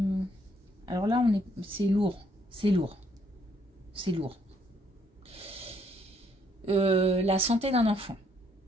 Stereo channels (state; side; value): normal; both; correlation 0.68